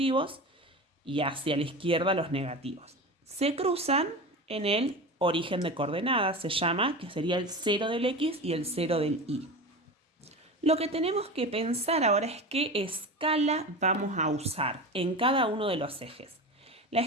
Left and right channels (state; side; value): normal; both; correlation 0.28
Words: y hacia la izquierda los negativos. Se cruzan en el origen de coordenadas, se llama, que sería el 0 del X y el 0 del Y. Lo que tenemos que pensar ahora es qué escala vamos a usar en cada uno de los ejes. La